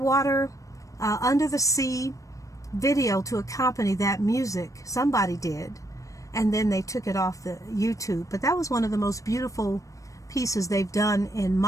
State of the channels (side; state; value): right; late; 0.16 ms